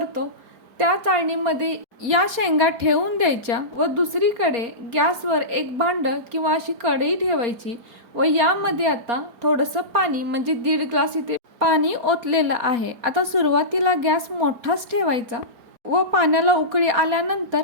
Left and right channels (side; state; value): left; late; 4.2 ms